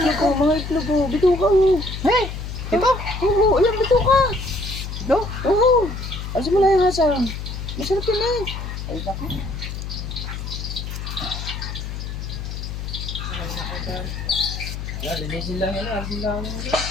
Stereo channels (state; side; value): noise; left; hum, 6 dB below the sound